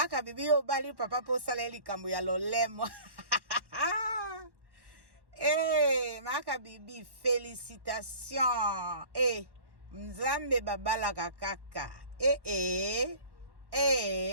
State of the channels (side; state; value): left; late; 1.1 ms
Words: bibi yo bali papa po sala likambo ya lolemo. Maka bibi félicitations. Nzambe babala kakaka.